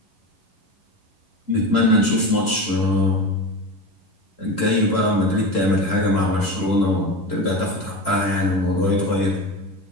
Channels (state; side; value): late; left; 11 ms